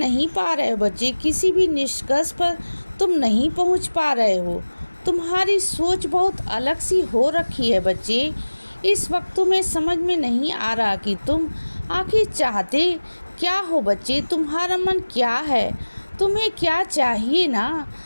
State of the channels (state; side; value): inverted; both; correlation -1.00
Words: पा रहे हो बच्चे। किसी भी निष्कर्ष पर तुम नहीं पहुँच पा रहे हो। तुम्हारी सोच बहुत अलग सी हो रखी है बच्चे। इस वक्त तुम्हें समझ में नहीं आ रहा कि तुम आखिर चाहते क्या हो बच्चे। तुम्हारा मन क्या है, तुम्हें क्या चाहिए ना,